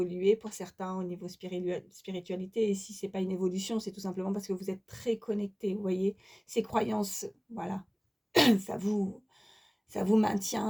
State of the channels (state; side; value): identical; both; correlation 1.00